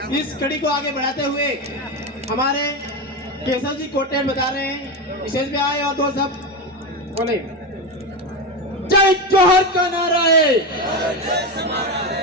इस कड़ी को आगे बढ़ाते हुए हमारे केशव जी कोटेल बता रहे हैं, स्टेज पे आए और दो सब बोले जय जोहर का नारा है।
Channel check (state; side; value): normal; both; correlation 0.17